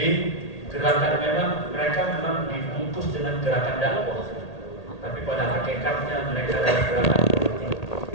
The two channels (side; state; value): right; late; 1.8 ms